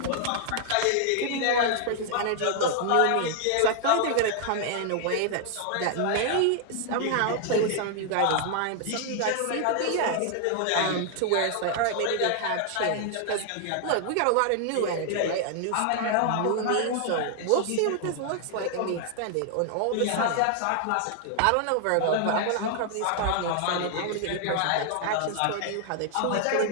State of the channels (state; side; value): different; both; correlation 0.00